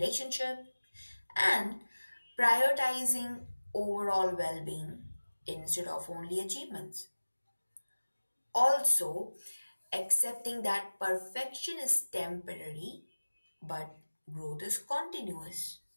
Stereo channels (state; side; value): inverted; both; correlation -1.00